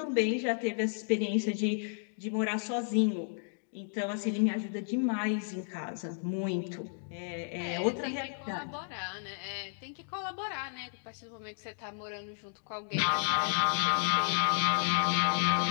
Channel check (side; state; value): right; silent; digital silence